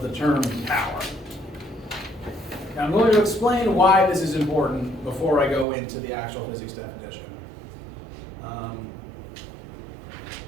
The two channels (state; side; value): drops out; left; at 5.7 s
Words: the term power. Now I'm going to explain why this is important before I go into the actual physics definition.